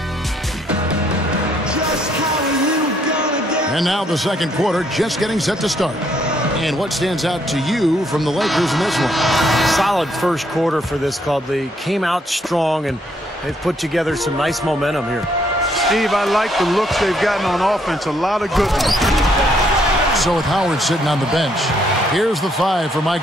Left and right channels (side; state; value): both; normal; correlation 0.70